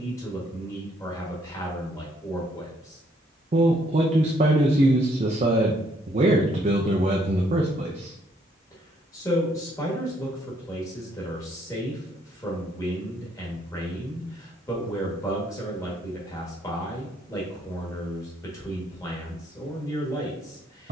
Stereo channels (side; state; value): both; normal; correlation 0.68